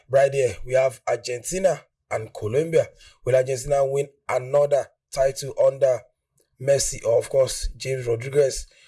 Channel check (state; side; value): identical; both; correlation 1.00